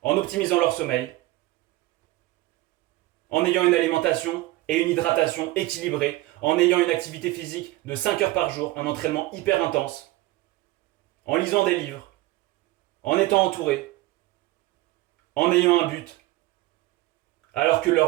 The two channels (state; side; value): quieter; left; 18.3 dB